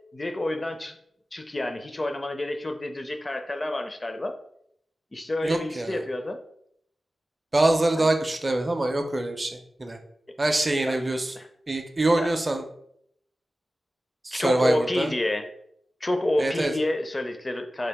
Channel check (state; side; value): normal; both; correlation 0.95